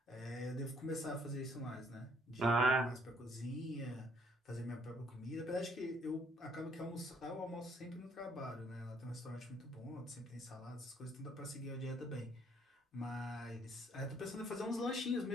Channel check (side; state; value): both; normal; correlation 0.65